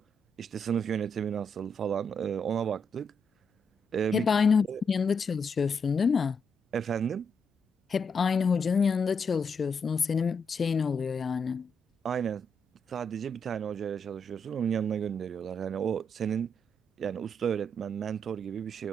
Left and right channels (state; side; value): normal; both; correlation 0.79